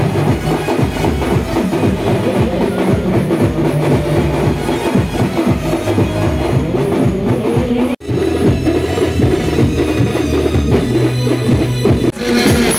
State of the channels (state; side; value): identical; both; correlation 1.00